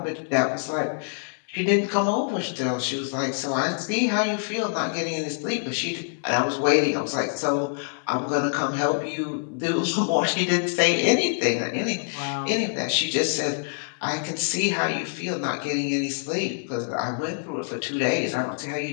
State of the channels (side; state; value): right; silent; digital silence